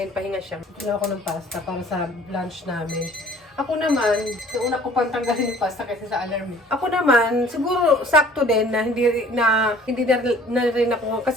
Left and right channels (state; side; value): normal; both; correlation 0.52